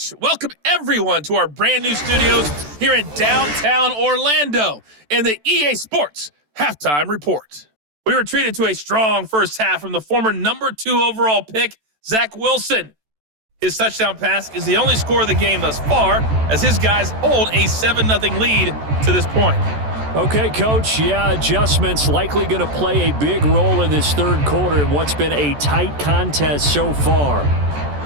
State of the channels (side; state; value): left; late; 14 ms